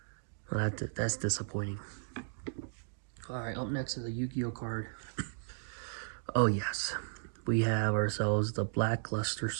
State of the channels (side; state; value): left; silent; digital silence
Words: Well, that's disappointing. Alright, up next is a Yu-Gi-Oh card. Oh yes. We have ourselves the Blackluster